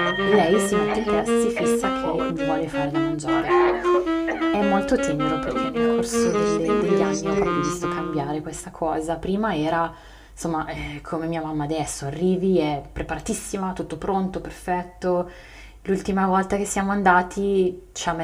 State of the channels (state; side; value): identical; both; correlation 1.00